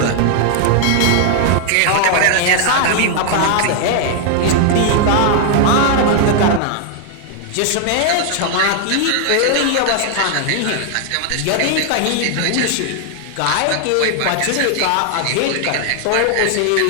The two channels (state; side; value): different; both; correlation 0.00